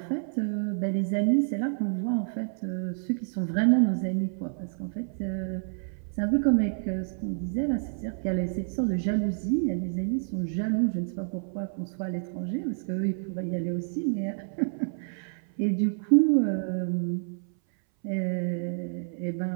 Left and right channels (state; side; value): silent; left; 59 dB below the other